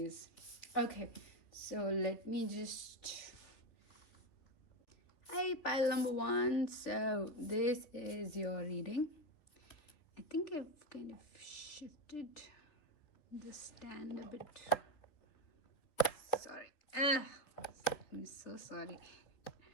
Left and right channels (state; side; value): late; right; 3.4 ms